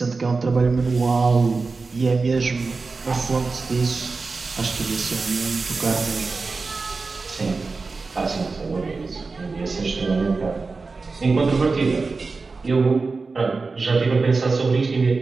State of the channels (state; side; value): quieter; left; 4.1 dB